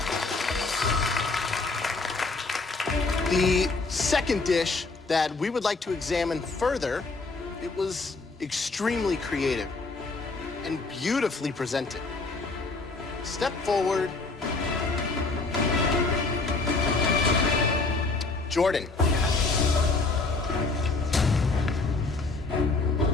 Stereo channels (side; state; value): right; quieter; 3.7 dB